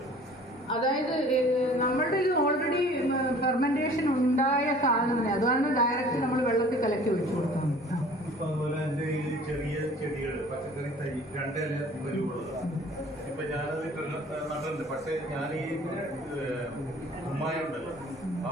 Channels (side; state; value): both; normal; correlation 0.49